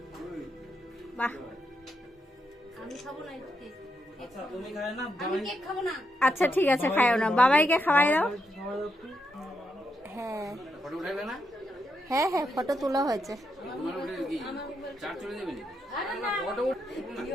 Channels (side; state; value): both; normal; correlation 0.82